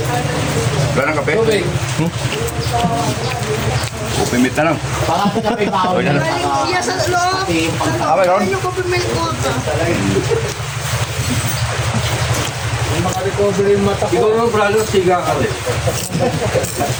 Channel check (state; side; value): identical; both; correlation 1.00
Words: Wala ng kape? Tubig. Upimit na lang. Baka ito na may baon. Galing siya sa loob. Okay, Ron. Ano yung coffee milk ko? Makarecover yung mata ko. Ikaw naman, brother, siga ka rin.